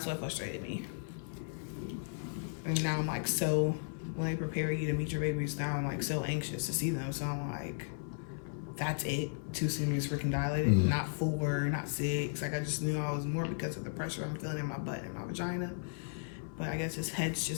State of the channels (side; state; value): right; silent; 54 dB below the other